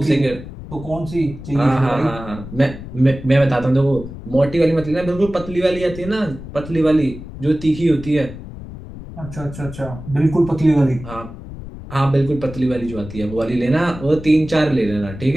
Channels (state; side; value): noise; left; rumble, 13 dB below the sound